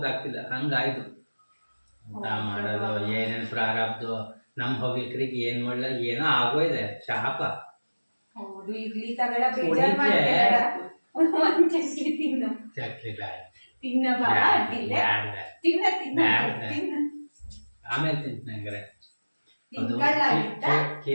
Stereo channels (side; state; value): both; inverted; correlation -1.00